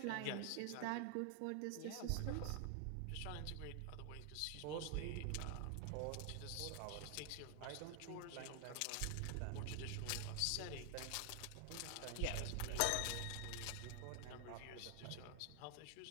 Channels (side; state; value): both; different; correlation 0.00